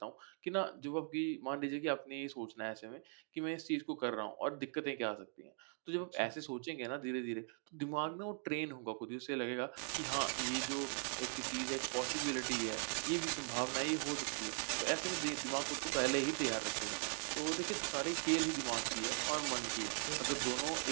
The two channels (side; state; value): left; silent; 51 dB below the other